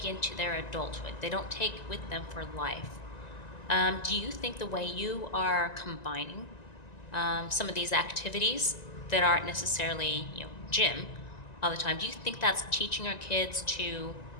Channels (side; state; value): right; late; 1.9 ms